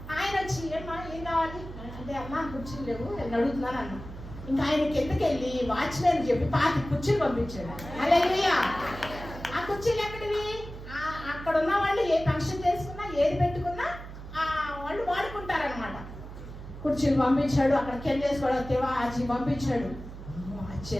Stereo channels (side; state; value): right; noise; hum, 12 dB below the sound